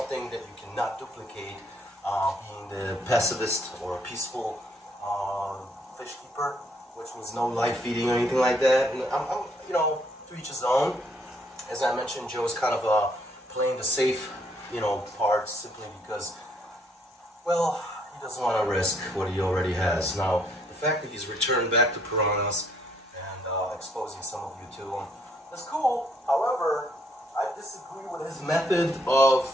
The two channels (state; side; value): normal; both; correlation 0.68